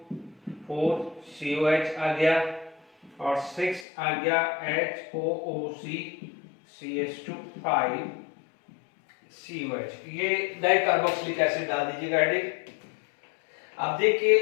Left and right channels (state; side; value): drops out; right; at 3.9 s